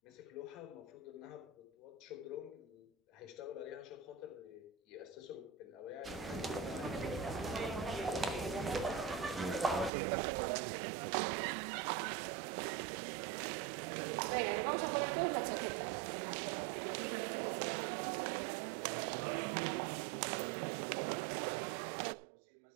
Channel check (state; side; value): drops out; left; at 9.9 s